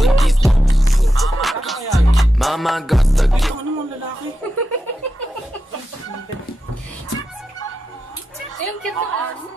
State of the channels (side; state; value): both; normal; correlation 0.89